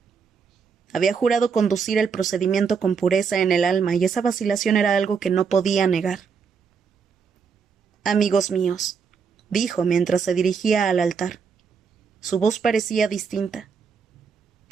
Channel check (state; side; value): quieter; left; 6.0 dB